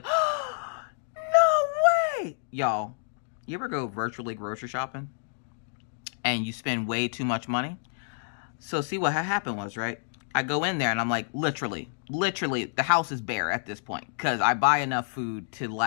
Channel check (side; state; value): right; silent; digital silence